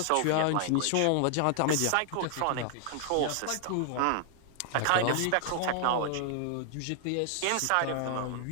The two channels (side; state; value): both; different; correlation 0.00